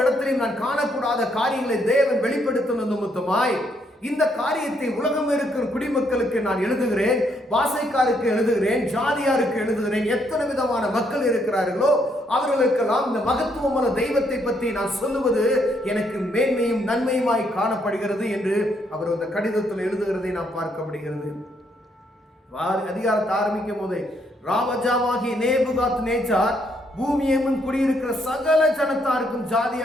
இடத்திலையும் நான் காணக்கூடாத காரியங்களை தேவன் வெளிப்படுத்தின நிமித்தமாய் இந்த காரியத்தை உலகம் இருக்கிற குடிமக்களுக்கு நான் எழுதுகிறேன், பாசைக்காருக்கு எழுதுகிறேன், ஜாதியாருக்கு எழுதுகிறேன். எத்தனை விதமான மக்கள் இருக்கிறார்களோ அவர்களுக்கெல்லாம் இந்த மகத்துவமான தெய்வத்தை பற்றி நான் சொல்லுவது எனக்கு மேன்மையும் நன்மையுமாய் காணப்படுகிறது என்று அவர் அந்த கடிதத்தில் எழுதுகிறதை நாம் பார்க்க முடிகிறது. அதிகாரத்தை ஆரம்பிக்கும் போது, ராஜாவாகிய நேபுகாத்நேச்சார் பூமியெங்கும் குடியிருக்கிற சகல ஜனத்தாருக்கும்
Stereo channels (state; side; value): normal; both; correlation 0.73